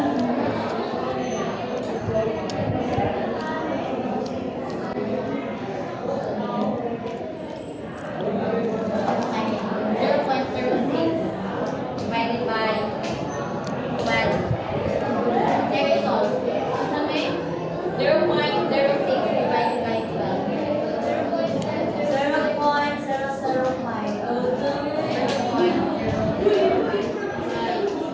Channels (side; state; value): both; identical; correlation 1.00